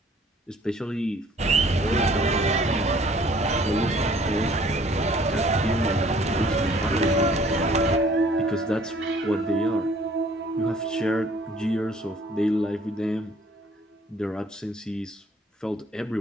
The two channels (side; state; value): both; normal; correlation 0.57